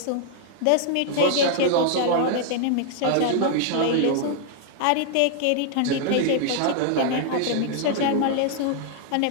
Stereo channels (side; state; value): both; different; correlation -0.01